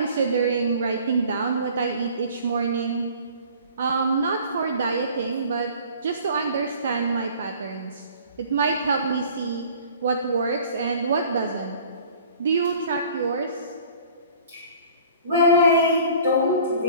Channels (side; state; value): both; inverted; correlation -0.49